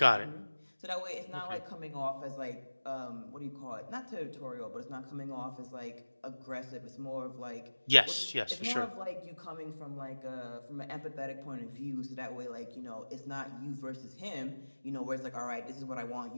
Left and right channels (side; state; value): both; inverted; correlation -1.00